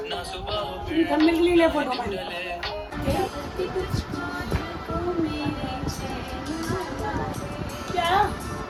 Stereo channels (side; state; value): both; identical; correlation 1.00